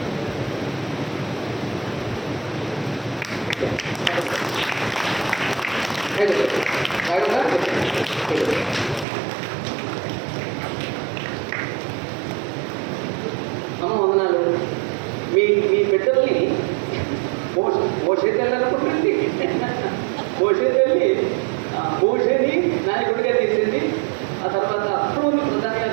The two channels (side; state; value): left; drops out; at 9.1 s